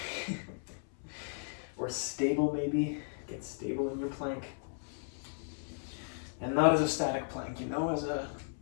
Or stable maybe, get stable in your plank. And not as a static plank, you know,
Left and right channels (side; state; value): right; silent; 54 dB below the other